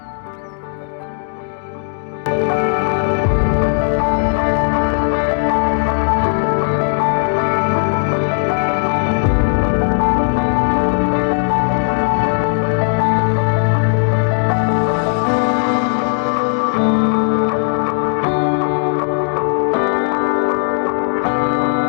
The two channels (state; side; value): silent; right; digital silence